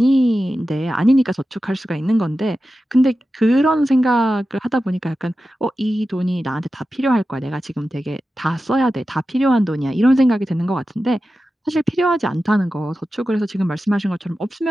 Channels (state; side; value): normal; both; correlation 0.93